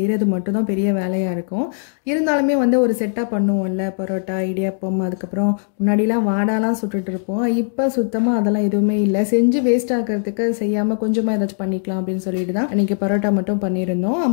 மட்டும்தான் பெரிய வேலையாக இருக்கும். இருந்தாலுமே வந்து ஒரு செட்டாக பண்ணுவோம்ல, பரோட்டா, இடியாப்பம், அதுக்கப்புறம் முன்னாடிலாம் வாடாலாம் சுட்டுட்டு இருப்போம். இப்போ சுத்தமாக அதெல்லாம் எதுவுமே இல்லை. செஞ்சு வேஸ்ட் ஆகிறதுக்கு செய்யாமல் கொஞ்சமாக ஏதாச்சும் பண்ணிக்கலாம் அப்படின்னு சொல்லிட்டு தான் இன்றைக்கி பரோட்டா மட்டும் பண்ணியிருந்தோம்.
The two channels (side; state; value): right; silent; digital silence